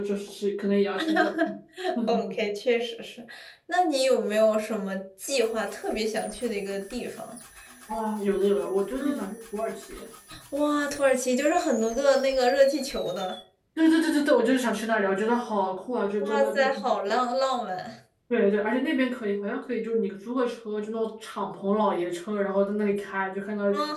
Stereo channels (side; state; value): both; identical; correlation 1.00